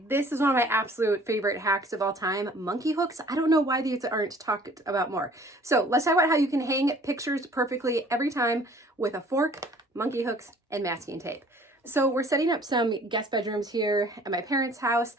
this is one of my absolute favorite hacks of all time, monkey hooks. I don't know why these aren't talked about more. So let's talk about how you can hang pictures perfectly every time with a fork, monkey hooks, and masking tape. So we're setting up some guest bedrooms here at my parents' house,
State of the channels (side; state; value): both; normal; correlation 0.53